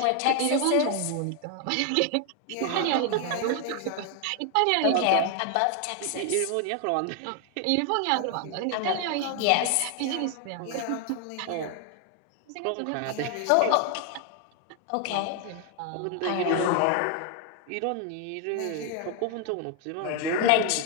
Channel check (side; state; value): both; different; correlation 0.00